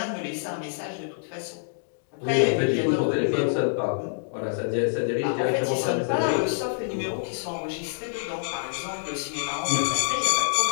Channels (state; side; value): silent; right; digital silence